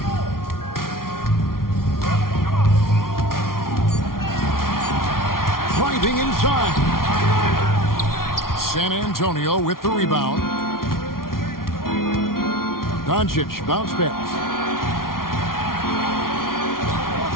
Driving inside. San Antonio with the rebound. Doncic bounce pass.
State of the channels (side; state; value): right; late; 0.93 ms